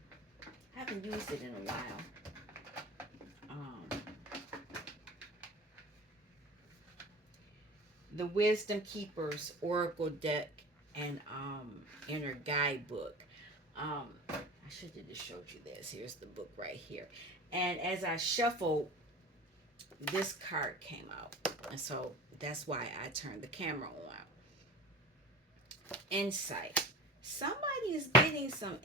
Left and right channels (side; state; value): both; normal; correlation 0.36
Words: haven't used it in a while. Um, the Wisdom Keepers Oracle deck and Inner Guidebook. I should have just showed you this. Here's the book right here. And as I shuffled, this card came out. And so that's why I turned the camera on. Insight. Somebody is getting some